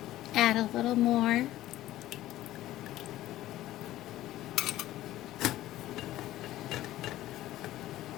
add a little more.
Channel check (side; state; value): right; quieter; 14.9 dB